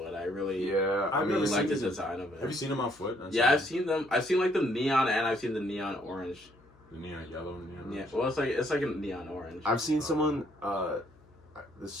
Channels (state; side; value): noise; left; hum, 28 dB below the sound